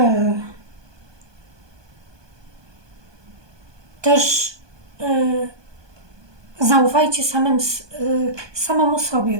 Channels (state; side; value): late; left; 1.2 ms